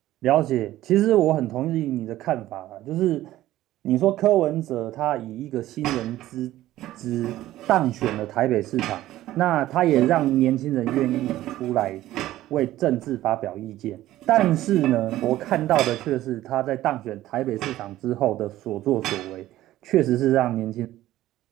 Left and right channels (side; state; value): left; quieter; 14.8 dB